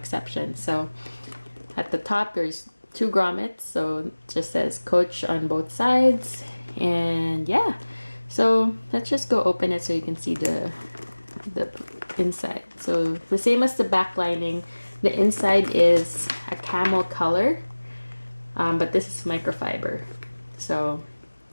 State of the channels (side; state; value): both; inverted; correlation -1.00